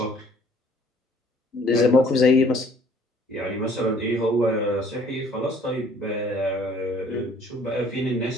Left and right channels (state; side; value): normal; both; correlation 0.58